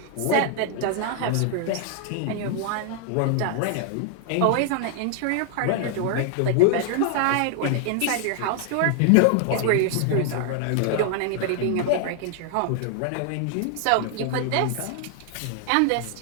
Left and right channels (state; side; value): different; both; correlation 0.00